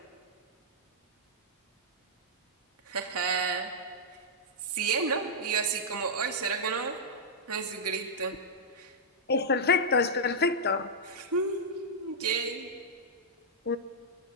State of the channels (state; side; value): normal; both; correlation -0.08